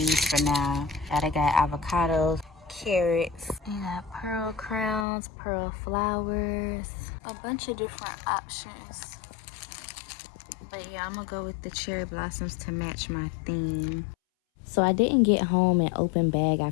for now. I got avocados, carrots, you got pearl crowns, pearl flowers, a bunch of different options. But yeah, I'm gonna go with the cherry blossoms to match my theme. So I didn't get home and open bag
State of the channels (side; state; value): right; drops out; at 5.1 s